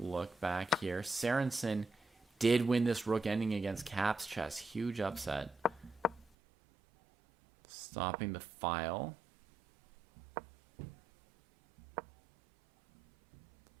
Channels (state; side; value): drops out; left; at 6.3 s